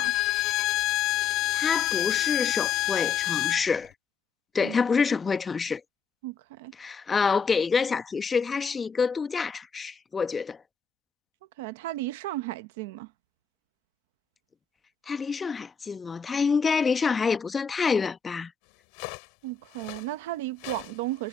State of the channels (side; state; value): right; quieter; 5.6 dB